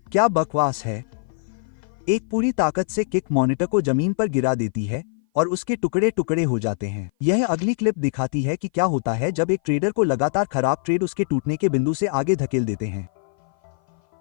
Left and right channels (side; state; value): right; silent; 57 dB below the other